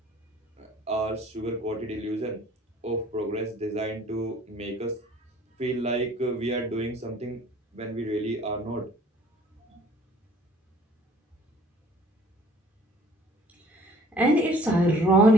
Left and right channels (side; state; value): both; normal; correlation 0.54